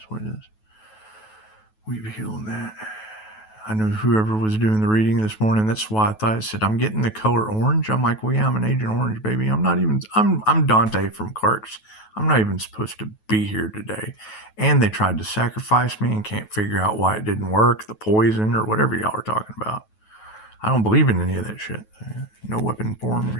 what it is. We've healed that. I know whoever was doing the reading this morning, that's why I said, I'm getting the color orange. I'm like, well, yeah, I'm an Agent Orange, baby. I'm Dante from Clark's. I'm not even supposed to be here today. And they tried to sacrifice me and can't figure out why it didn't work, the poison or whatever y'all are talking about. I don't believe in any of that shit. No weapon form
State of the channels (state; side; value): late; right; 9.3 ms